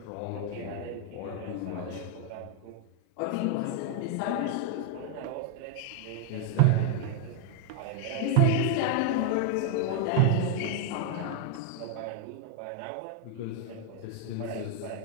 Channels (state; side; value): different; both; correlation 0.00